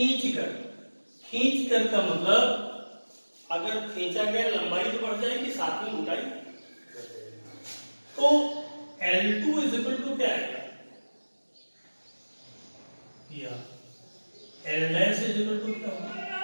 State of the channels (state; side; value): inverted; both; correlation -1.00